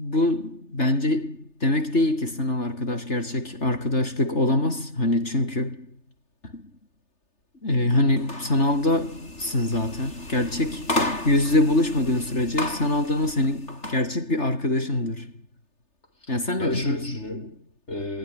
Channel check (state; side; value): late; right; 3.3 ms